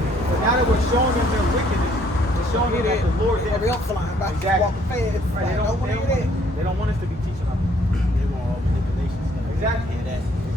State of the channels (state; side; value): normal; both; correlation 0.64